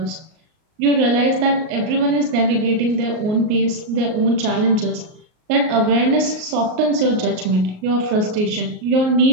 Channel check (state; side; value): late; left; 38 ms